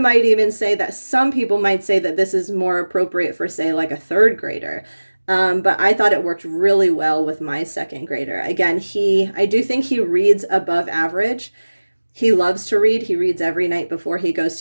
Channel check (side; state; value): both; inverted; correlation -1.00